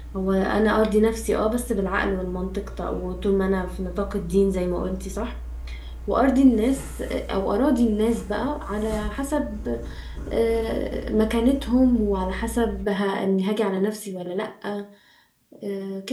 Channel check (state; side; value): identical; both; correlation 1.00